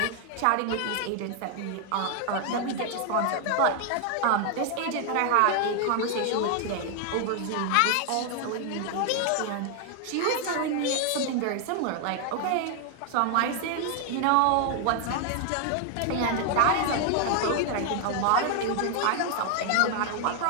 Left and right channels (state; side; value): different; both; correlation 0.00